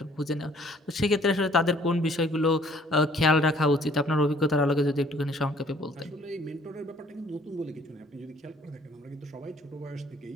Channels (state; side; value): normal; both; correlation 0.59